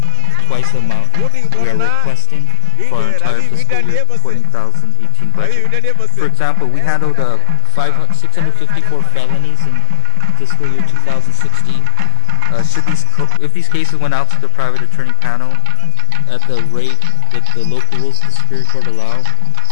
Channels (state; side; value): different; both; correlation 0.02